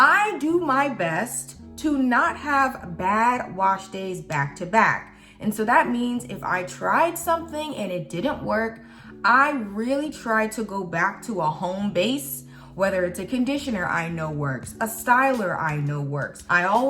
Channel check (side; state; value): both; identical; correlation 1.00